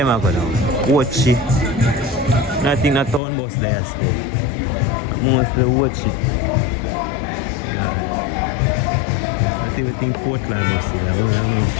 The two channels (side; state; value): right; drops out; at 3.2 s